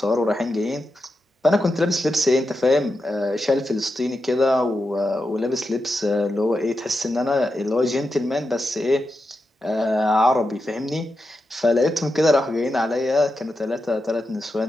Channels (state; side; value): normal; both; correlation 0.88